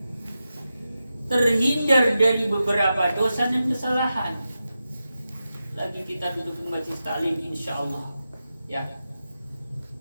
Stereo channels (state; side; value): inverted; both; correlation -0.90